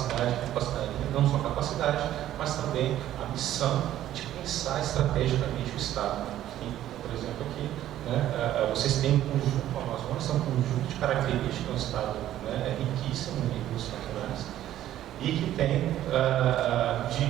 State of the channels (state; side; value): quieter; left; 12.7 dB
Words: não só a capacidade, mas também a missão de pensar estrategicamente o Estado. Por exemplo, aqui, né, vocês têm um conjunto, o Amazonas é um conjunto de características do Estado, né, riquíssimo em recursos naturais e que tem